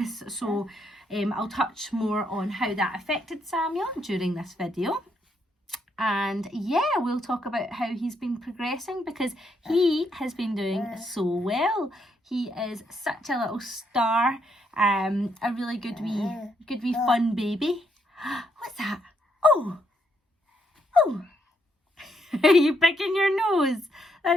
so I'll touch more on how that affected Samuel during this video. And yeah, we'll talk about how he's been progressing because he has been doing so well. He is such a little star, a really good wee fun baby. What's that? Oh! Are you picking your nose?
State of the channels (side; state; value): both; normal; correlation 0.75